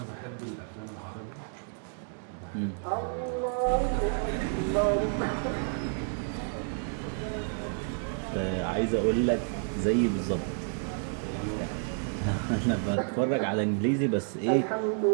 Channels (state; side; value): silent; left; 58 dB below the other